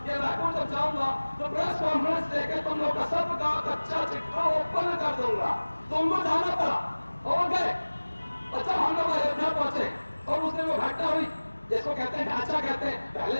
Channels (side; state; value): both; inverted; correlation -1.00